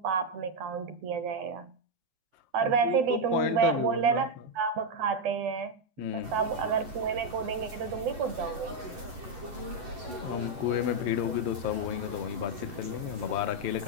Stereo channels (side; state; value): left; late; 11 ms